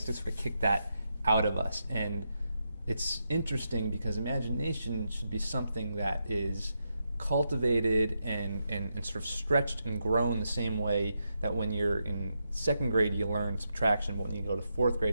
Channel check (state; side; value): inverted; both; correlation -0.84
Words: to sort of kick that out of us. And it's interesting because imagination should be something that is cultivated and sort of stretched and grown the same way that when you're in second grade you learn subtraction, but when you go to fourth